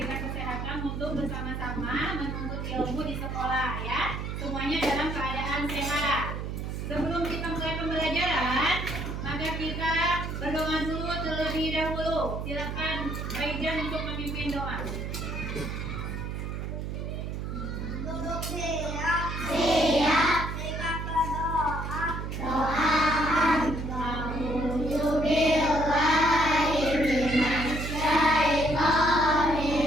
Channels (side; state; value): right; noise; hum, 5 dB below the sound